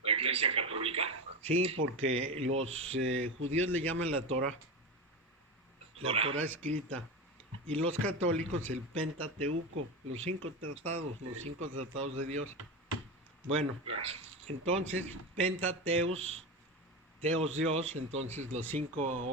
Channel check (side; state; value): both; normal; correlation 0.20